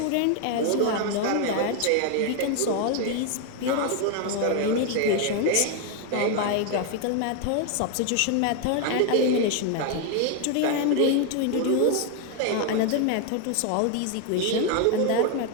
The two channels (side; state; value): both; different; correlation 0.01